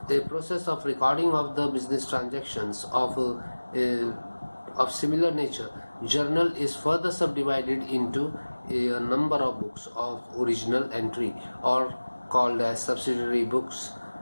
process of recording of the business transactions of similar nature, journal is further subdivided into a number of books of original entry, or called as subsidiary books.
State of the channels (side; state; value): both; inverted; correlation -1.00